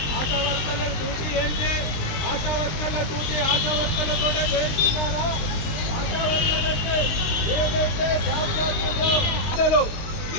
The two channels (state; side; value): late; right; 20 ms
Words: ఆశా వర్కర్ల డ్యూటీ ఏంటి, ఆశా వర్కర్ల డ్యూటీ ఆశా వర్కర్లతో చేస్తున్నారా, ఆశా వర్కర్లకి ఏదైతే జాబ్ కార్డులో